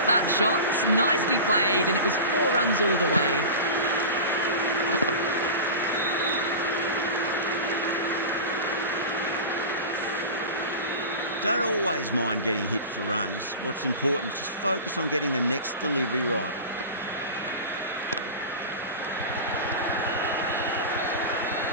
that shot. Nicely played, and it was 4 runs all the way. Don't always mind getting hit for runs. What's important is just focus on getting the next delivery right.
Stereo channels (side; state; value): both; inverted; correlation -0.30